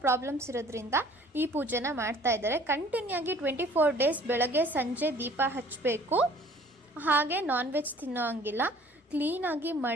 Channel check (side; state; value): both; normal; correlation 0.53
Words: ಪ್ರಾಬ್ಲಮ್ಸ್ ಇರೋದ್ರಿಂದ ಈ ಪೂಜೆನ ಮಾಡ್ತಾ ಇದ್ದಾರೆ. ಕಂಟಿನ್ಯೂ ಆಗಿ 24 ಡೇಸ್ ಬೆಳಗ್ಗೆ ಸಂಜೆ ದೀಪ ಹಚ್ಚಬೇಕು. ಹಾಗೆ ನಾನ್ ವೆಜ್ ತಿನ್ನೋ ಹಂಗಿಲ್ಲ. ಕ್ಲೀನಾಗಿ